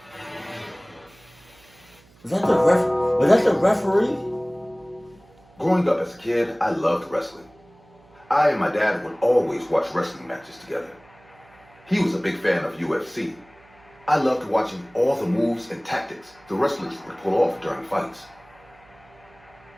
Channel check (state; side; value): noise; right; hum, 28 dB below the sound